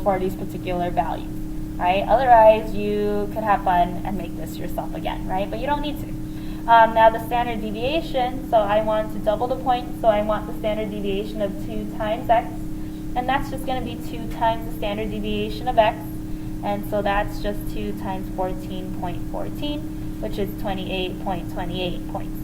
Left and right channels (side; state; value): both; identical; correlation 1.00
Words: for these particular values. Right? Otherwise, you could have fun and make this yourself again, right? But you don't need to. Now the standard deviation, so I want to double the points, so I want the standard deviation of 2 times x, and that's just going to be 2 times the standard deviation of x, and so that's just 2 times 14.14, which is 28.28 points.